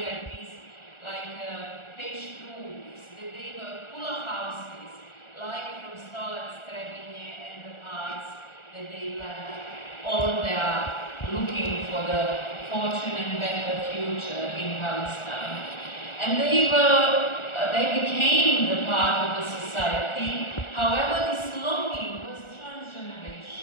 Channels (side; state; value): right; late; 1.4 ms